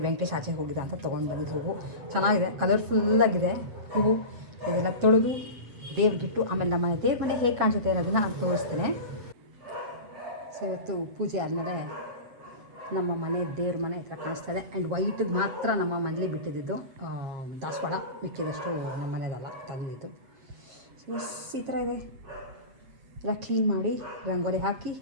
ವೆಂಕಟೇಶ್ ಆಚೆ ಹೋಗಿದ್ದ ಅಂತ ತೊಗೊಂಡು ಬಂದಿದ್ದು ಹೂವು ಚೆನ್ನಾಗಿದೆ, ಕಲರ್ಫುಲ್ಲಾಗಿದೆ ಹೂವು. ಇದೆಲ್ಲ ತೊಳೆದು ದೇವ್ರಿಗಿಟ್ಟು ಆಮೇಲೆ ನಮ್ಮ ದೇವ್ರ ಮನೆ ಹೇಗೆ ಕಾಣಿಸುತ್ತೆ ಅನ್ನೋದನ್ನು ನಾನು ತೋರಿಸ್ತೇನೆ. ಸೊ ಇವತ್ತು ಪೂಜೆ ಆದಮೇಲೆ ನಮ್ಮ ಮನೆ ದೇವ್ರ ಮನೆ ಈ ಥರ ಕಾಣಿಸ್ತಾ ಇದೆ. ಆ್ಯಂಡ್ ವೈಟಿಗೆ ಮಾತ್ರ ನಮ್ಮ ಮನೇಲಿ ಬಿಟ್ಟಿದ್ದು ದಾಸವಾಳ, ಮಿಕ್ಕಿದಷ್ಟು ನಮ್ಮ ಮನೆಯದಲ್ಲ ತಂದಿದ್ದು. ಸೊ ಈ ಥರ ಇದೆ. ಎಲ್ಲ ಕ್ಲೀನ್ ಮಾಡಿ ರಂಗೋಲಿ ಹಾಕಿ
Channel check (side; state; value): left; late; 7.9 ms